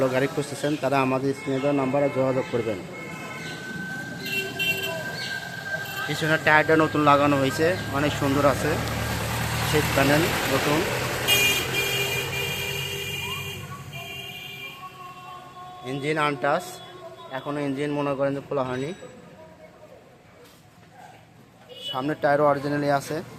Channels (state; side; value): identical; both; correlation 1.00